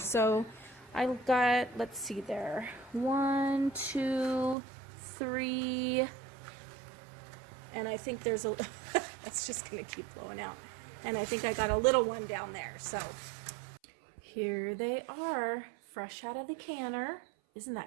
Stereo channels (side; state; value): left; drops out; at 4.5 s